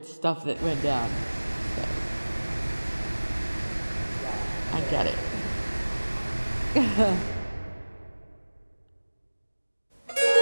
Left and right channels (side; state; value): both; inverted; correlation -1.00